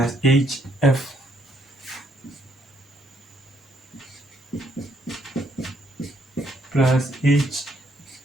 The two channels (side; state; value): both; normal; correlation 0.71